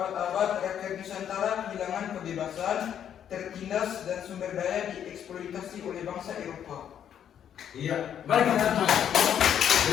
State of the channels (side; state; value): right; quieter; 9.3 dB